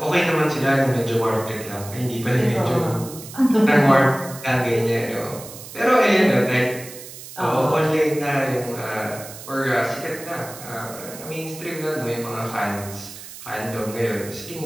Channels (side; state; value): right; noise; hiss, 14 dB below the sound